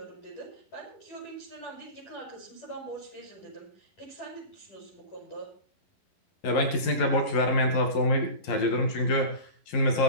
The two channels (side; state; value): right; late; 11 ms